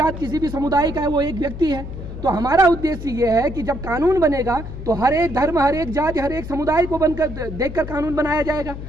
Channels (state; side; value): noise; left; hum, 9 dB below the sound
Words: किसी भी समुदाय का है, वो एक व्यक्ति है। तो हमारा उद्देश्य ये है कि जब कानून बनेगा तो हर एक धर्म, हर एक जाति, हर एक समुदाय को बनकर देखकर कानून बनाया जाएगा।